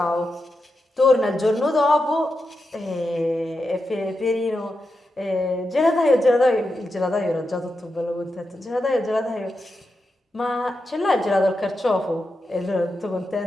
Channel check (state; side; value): normal; both; correlation 0.88